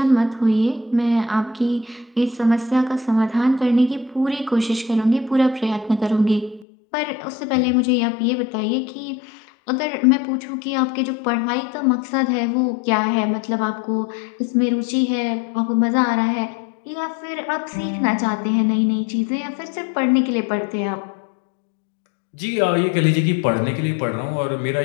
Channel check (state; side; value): drops out; right; at 6.7 s